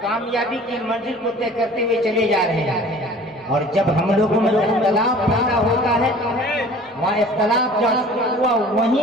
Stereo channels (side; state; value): both; normal; correlation 0.47